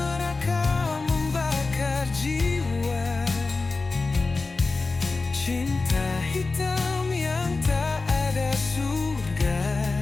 membakar jiwa, cinta hitam yang tak ada surga.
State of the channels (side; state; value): right; quieter; 3.8 dB